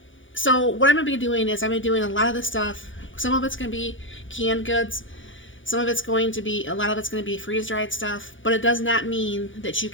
so what I'm going to be doing is I'm going to be doing a lot of the stuff. Some of it's going to be canned goods. Some of it's going to be, a lot of it's going to be freeze-dried stuff. But it does not mean that you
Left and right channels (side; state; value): right; late; 0.56 ms